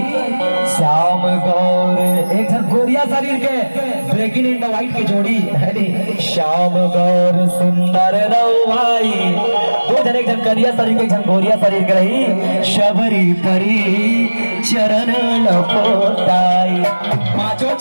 श्याम गौर एक जन गोरिया शरीर के ब्रेकिंग इन द वाइट की जोड़ी है श्याम गौर सुंदर रवाई दो जन एक जन करिया शरीर के एक जन गोरिया शरीर के रही शबरी परी चरण लपोटाई पांचों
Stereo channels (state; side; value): inverted; both; correlation -1.00